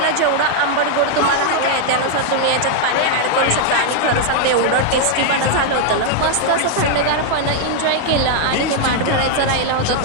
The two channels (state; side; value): different; both; correlation 0.00